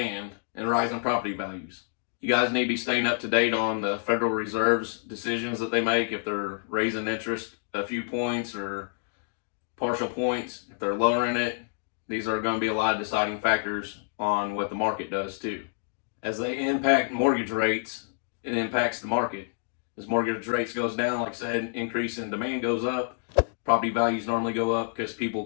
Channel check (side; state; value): right; silent; digital silence